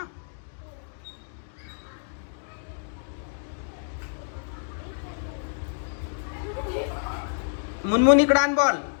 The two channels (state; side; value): silent; right; digital silence